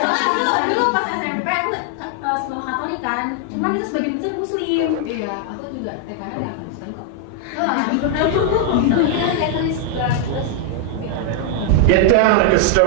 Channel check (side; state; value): both; different; correlation 0.00